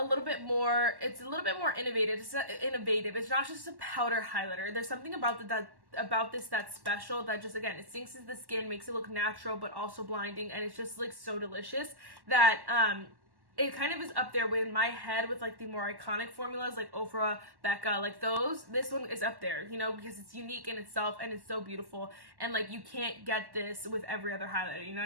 little bit more innovative. It's not just a powder highlighter. There's something about this that's special, that just, again, it sinks into the skin, makes it look natural but also blinding, and it's just like so delicious that it kind of is up there in my head with like the more iconic formulas like Ofra, Becca, like those. This one is up there, you know, because it's unique in itself and it's so beautiful, and like you can't get this with every other highlighter, you know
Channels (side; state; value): left; late; 1.1 ms